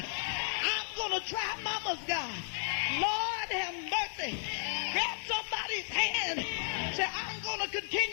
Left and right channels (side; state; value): right; silent; digital silence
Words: going to try Mama's God. Lord have mercy. Grab somebody's hand. Say, I'm going to